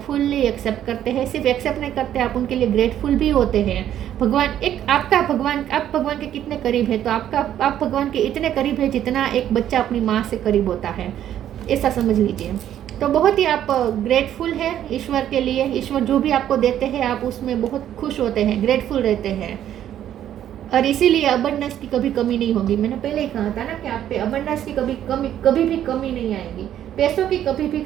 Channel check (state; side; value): quieter; left; 11.0 dB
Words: फुल्ली एक्सेप्ट करते हैं। सिर्फ एक्सेप्ट नहीं करते, आप उनके लिए ग्रेटफुल भी होते हैं। भगवान एक आपका भगवान, आप भगवान के कितने करीब है, तो आप भगवान के इतने करीब है जितना एक बच्चा अपनी माँ से करीब होता है, ऐसा समझ लीजिए। तो बहुत ही आप ग्रेटफुल है ईश्वर के लिए, ईश्वर जो भी आपको देते हैं आप उसमें बहुत खुश होते हैं, ग्रेटफुल रहते हैं, और इसीलिए अबंडेंस की कभी कमी नहीं होगी। मैंने पहले ही कहा था ना कि आप पे अबंडेंस की कभी भी कमी नहीं आएगी, पैसों की कभी भी